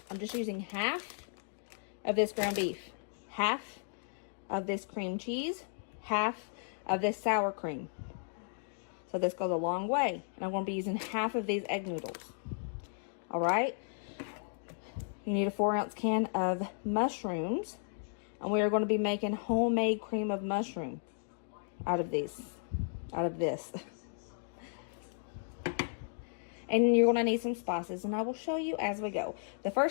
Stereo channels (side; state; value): right; silent; digital silence